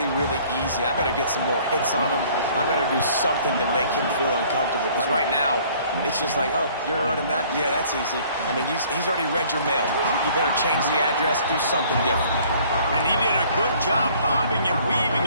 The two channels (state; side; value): inverted; both; correlation -0.56